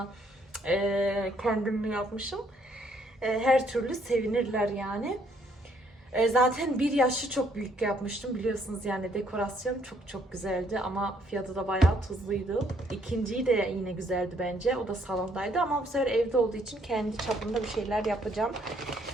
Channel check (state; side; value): normal; both; correlation 0.67